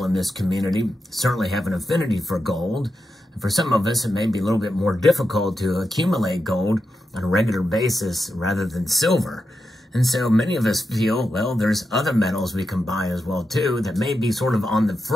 in this community certainly have an affinity for gold. And for some of us, it may be a little bit more difficult to accumulate gold on a regular basis rather than silver. And so many of us feel, well, there's other metals we can buy as well, too, that may be sort of on the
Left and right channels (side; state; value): both; normal; correlation 0.88